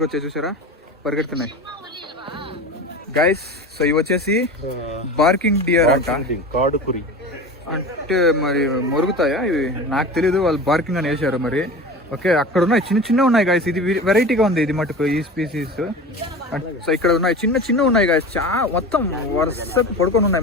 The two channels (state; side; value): normal; both; correlation 0.32